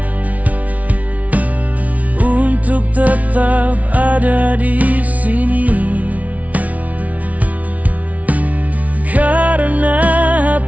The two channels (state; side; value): late; left; 0.070 ms